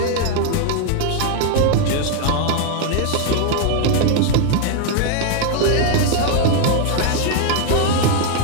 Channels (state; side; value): different; both; correlation 0.00